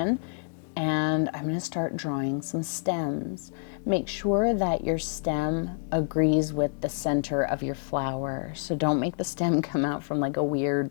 and I'm going to start drawing some stems. Make sure that your stem agrees with the center of your flower, so don't make the stem come out from like a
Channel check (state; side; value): silent; right; 60 dB below the other